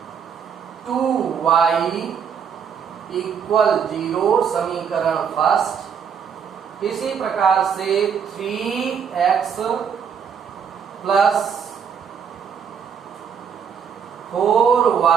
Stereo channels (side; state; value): left; quieter; 7.2 dB